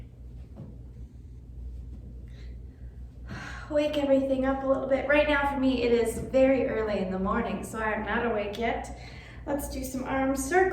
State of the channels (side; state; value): both; identical; correlation 1.00